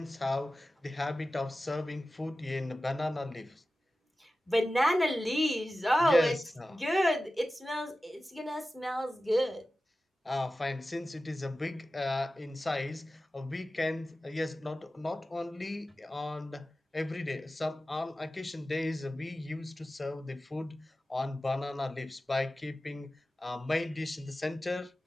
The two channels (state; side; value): normal; both; correlation 0.95